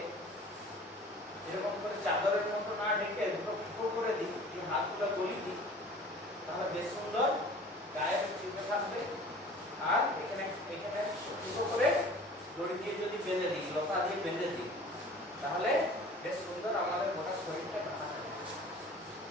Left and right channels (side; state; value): both; normal; correlation 0.45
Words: এরকম করে চাদরের মতো না ঢেকে দুটো ফুটো করে দিই, হাতগুলো গলি দিই, তাহলে বেশ সুন্দর গায়ে চিপে থাকবে। আর এখানে ফুটো করে দড়ি দিয়ে যদি বেঁধে দিই, লতা দিয়ে বেঁধে দিই, তাহলে বেশ সুন্দর আমাদের গোটা শরীরটা ঢাকা থাকবে।